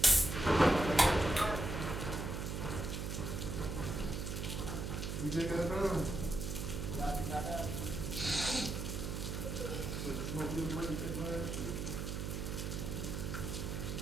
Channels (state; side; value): noise; right; hum, 3 dB below the sound